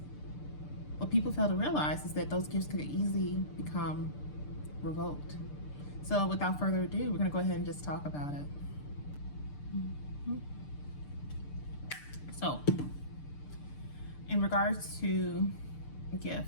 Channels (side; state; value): right; late; 6.8 ms